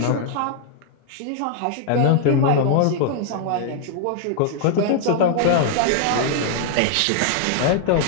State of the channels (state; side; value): different; both; correlation 0.00